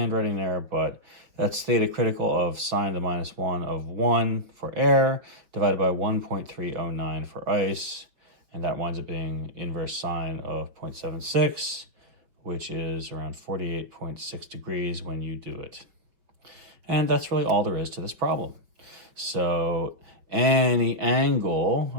there, but that's theta critical of sine to the minus 1 of 1 for air, divided by 1.309 for ice, and that winds up being inverse sine of 0.76, which is around 48.6 degrees when you do it. And that's really all there is to this problem. So any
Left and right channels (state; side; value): late; left; 5.8 ms